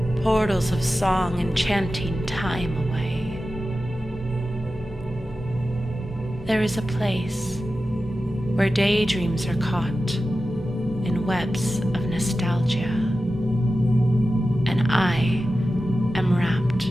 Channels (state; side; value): normal; both; correlation 0.93